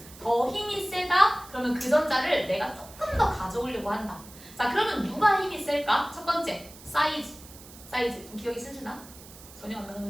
더 힘이 세다? 그러면 그 전자를 내가 조금 더 가져오려고 한다. 자, 그러면 누가 힘이 셀까? 첫 번째, 사이즈. 좀 기억이 슬슬나? 전혀 안 나는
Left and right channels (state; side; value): noise; right; hiss, 19 dB below the sound